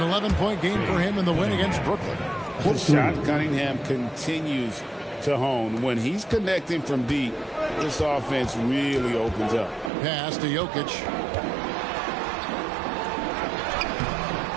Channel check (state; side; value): drops out; left; at 9.9 s